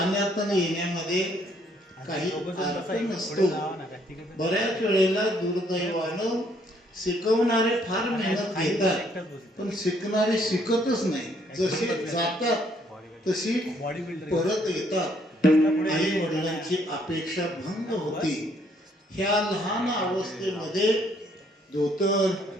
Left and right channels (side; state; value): both; normal; correlation 0.67